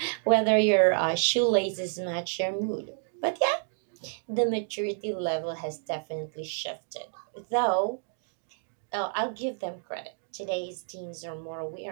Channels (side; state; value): left; silent; digital silence